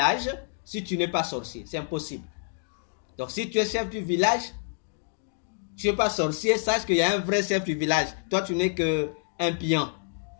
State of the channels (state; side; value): silent; right; digital silence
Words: si tu n'es pas sorcier. C'est impossible. Donc, si tu es chef du village, tu n'es pas sorcier, sache qu'il y a un vrai chef du village. Toi, tu n'es qu'un pion.